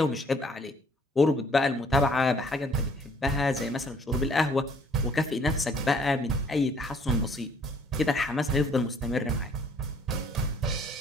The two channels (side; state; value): both; normal; correlation 0.60